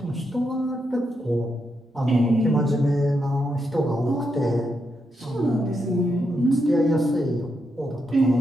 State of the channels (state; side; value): normal; both; correlation 0.83